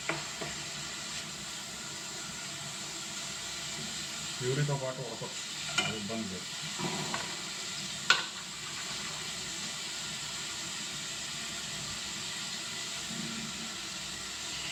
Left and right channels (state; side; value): identical; both; correlation 1.00